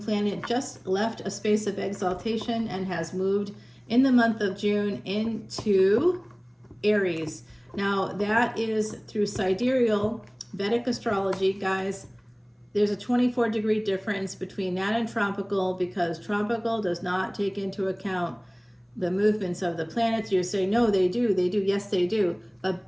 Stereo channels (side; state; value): both; identical; correlation 1.00